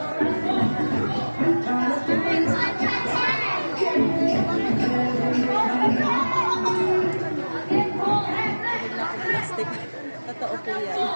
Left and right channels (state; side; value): inverted; both; correlation -1.00